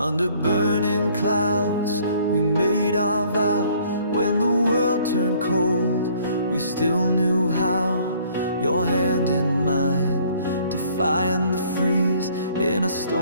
burning clouds, we made our vow. When the world turned cold, we still knew how. Your hand in mine, defying the freeze. In a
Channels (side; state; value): both; inverted; correlation -0.59